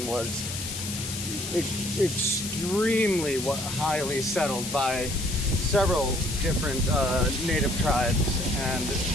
was extremely highly settled by several different native tribes, and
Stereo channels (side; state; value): left; noise; hiss, 7 dB below the sound